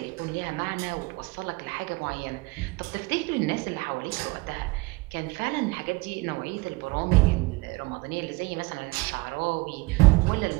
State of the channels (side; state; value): left; quieter; 24.3 dB